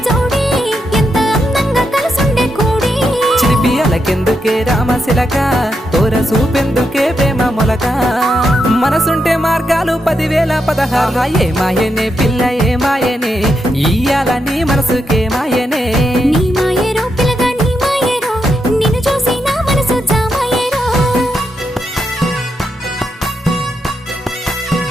జోడి ఎంత అందంగా కలుసుండే కూడి చిలిపి అలకెందుకే రామశిలక తోర సూపెందుకే ప్రేమ మొలక మనసుంటే మార్గాలు 10,016 ఏ మాయనే పిల్ల ఏ మాయనే ఇయ్యాల నీ మనసుకే మాయనే నీ మాయేరో పిల్లగా నీ మాయేరో నిన్ను చూసి నా మనసు జామాయేరో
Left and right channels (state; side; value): normal; both; correlation 0.83